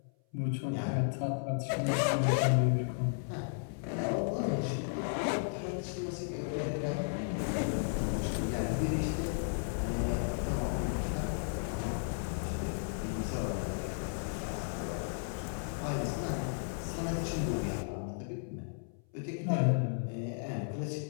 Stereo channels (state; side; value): silent; right; 55 dB below the other